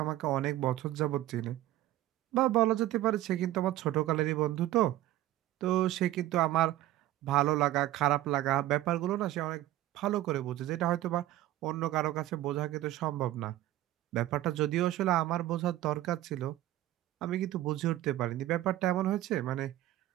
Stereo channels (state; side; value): quieter; left; 14.8 dB